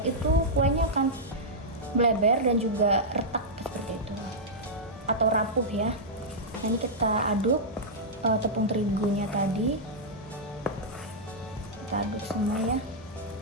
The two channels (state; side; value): normal; both; correlation -0.08